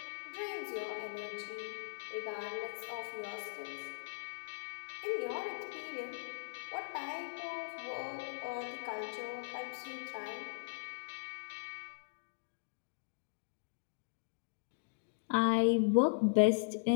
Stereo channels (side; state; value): right; silent; digital silence